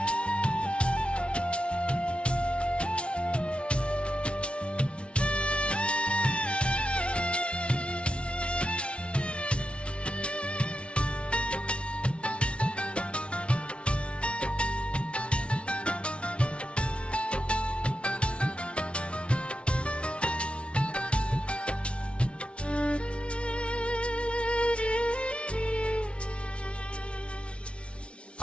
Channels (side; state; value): right; late; 0.059 ms